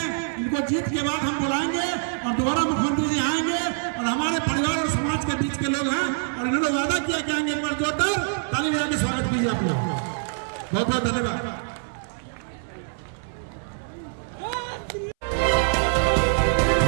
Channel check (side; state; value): left; silent; 62 dB below the other